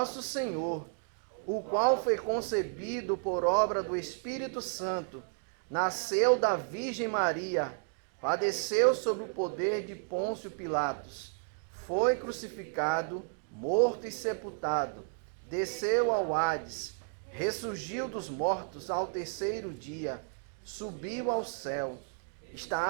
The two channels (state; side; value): silent; left; digital silence